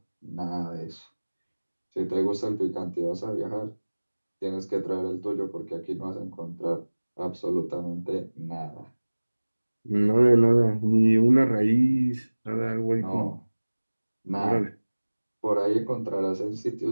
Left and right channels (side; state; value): both; inverted; correlation -1.00